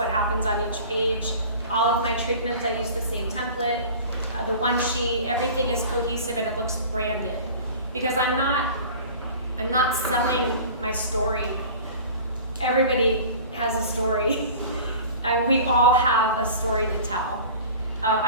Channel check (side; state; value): both; inverted; correlation -0.41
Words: happens on each page. All of my treatments, I use the same template. The one sheet, everything is cohesive and it looks branded. Because I'm not selling my story. Everybody has a story. We all have a story to tell.